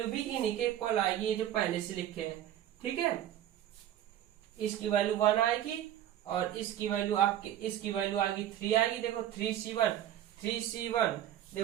भी इन्हीं के इक्वल आएगी, जो पहले से लिखे हैं, ठीक है। इसकी वैल्यू 1 आएगी और इसकी वैल्यू आपकी, इसकी वैल्यू आएगी 3 आएगी, देखो 3C1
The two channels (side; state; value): left; quieter; 11.8 dB